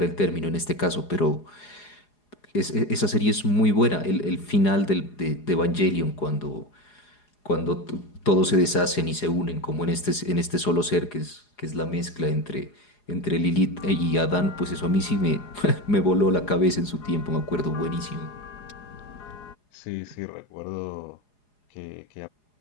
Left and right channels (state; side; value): late; right; 4.8 ms